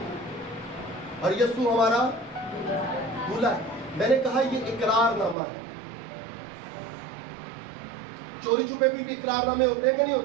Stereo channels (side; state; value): left; drops out; at 5.4 s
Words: اور یسوع ہمارا دلہا ہے۔ میں نے کہا یہ اقرار نامہ ہے۔ چوری چھپے بھی اقرار نامے ہوتے ہیں کہ نہیں